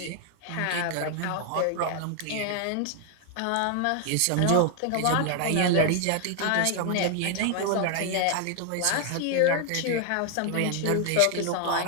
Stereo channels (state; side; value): different; both; correlation 0.00